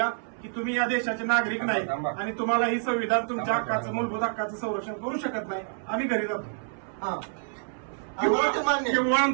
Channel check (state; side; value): silent; left; 60 dB below the other